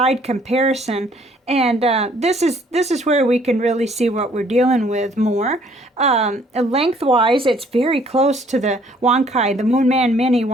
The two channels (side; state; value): both; normal; correlation 0.61